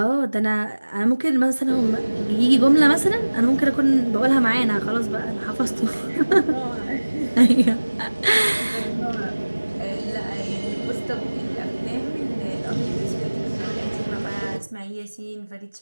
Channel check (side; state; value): both; inverted; correlation -1.00